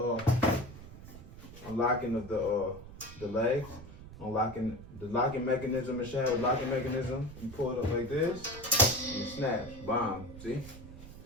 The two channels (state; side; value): noise; right; rumble, 15 dB below the sound